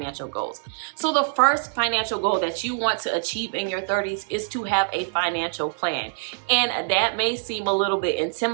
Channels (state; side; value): silent; left; digital silence